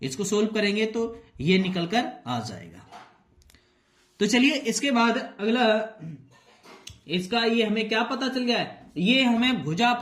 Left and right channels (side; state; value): both; identical; correlation 1.00